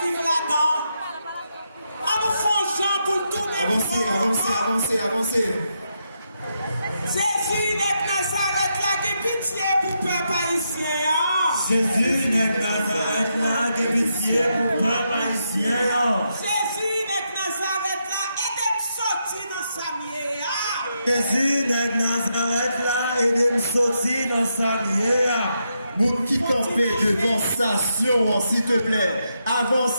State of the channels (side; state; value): both; inverted; correlation -0.82